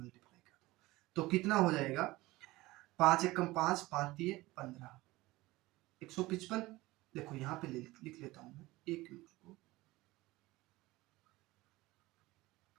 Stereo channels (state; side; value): quieter; left; 19.6 dB